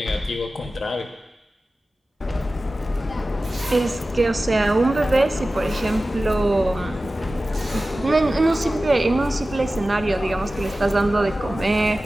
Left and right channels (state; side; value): normal; both; correlation 0.95